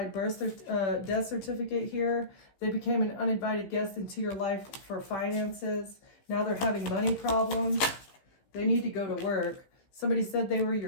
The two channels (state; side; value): late; right; 15 ms